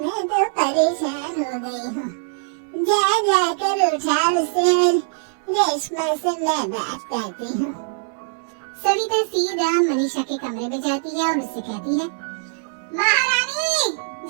तो परेशान हो गई हूँ। जा जाकर उठा उसे, रेशमा से मैं बात करती हूँ। सविता सीधा मनीषा के कमरे में जाती है और उससे कहती है, महारानी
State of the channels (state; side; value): silent; left; 63 dB below the other